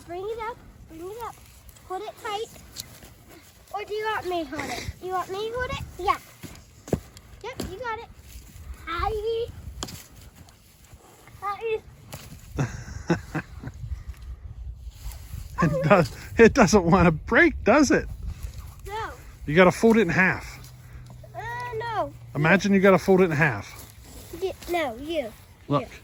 bring it up. Bring it up. Hold it tight. Or do you want me to hold it? You want me to hold it? Yeah. Yep, you got it. Hi. Hi. It doesn't want to break, does it? No. You got to fold it in half. No. Imagine you got to fold it in half. No, you. Look. You.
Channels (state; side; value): identical; both; correlation 1.00